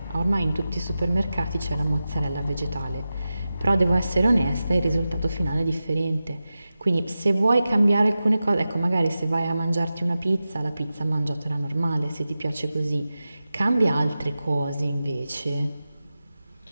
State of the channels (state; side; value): inverted; both; correlation -0.93